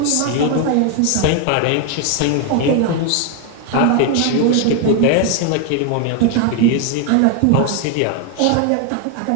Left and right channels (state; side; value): different; both; correlation 0.01